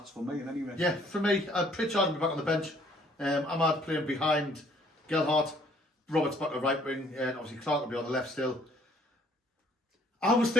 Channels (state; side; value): normal; both; correlation 0.61